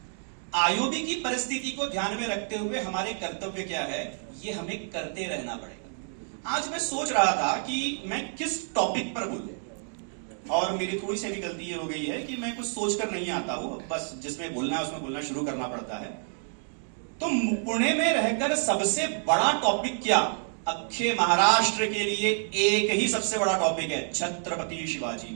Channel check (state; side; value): silent; left; 59 dB below the other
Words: आईओबी की परिस्थिति को ध्यान में रखते हुए हमारे कर्तव्य क्या है, ये हमें करते रहना पड़ेगा। आज मैं सोच रहा था कि मैं किस टॉपिक पर बोलूं, और मेरी थोड़ी सी भी गलती ये हो गई है कि मैं कुछ सोचकर नहीं आता हूं, बस जिसमें बोलना है उसमें बोलना शुरू करना पड़ता है। तो पुणे में रहकर सबसे बड़ा टॉपिक क्या, अक्षय महाराष्ट्र के लिए एक ही सबसे बड़ा टॉपिक है, छत्रपति शिवाजी